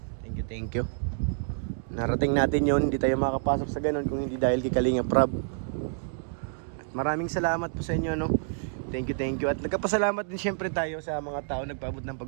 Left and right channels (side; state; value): left; silent; digital silence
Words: Thank you. Narating natin yun, hindi tayo makapasok sa ganun kung hindi dahil kay Kalinga Prab. At maraming salamat po sa inyo, Thank you. At nagkapasalamat din syempre tayo sa mga tao nagpaabot ng